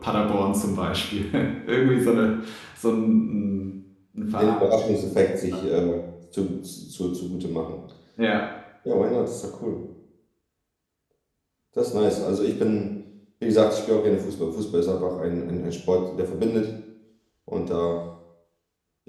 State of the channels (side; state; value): both; identical; correlation 1.00